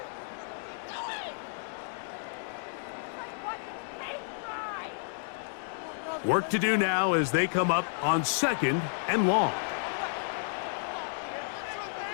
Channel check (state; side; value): silent; right; digital silence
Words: Work to do now as they come up on 2nd and long.